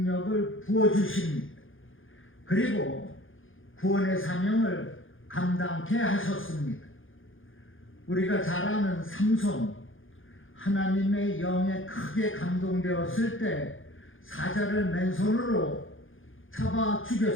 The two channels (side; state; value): right; late; 0.58 ms